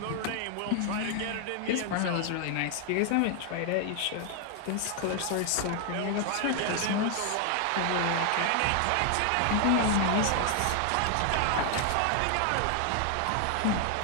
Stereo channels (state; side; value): different; both; correlation 0.00